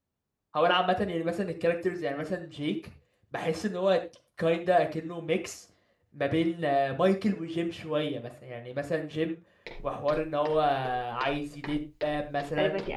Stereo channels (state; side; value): identical; both; correlation 1.00